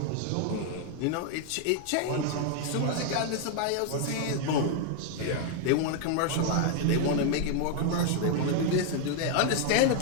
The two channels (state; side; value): different; both; correlation 0.00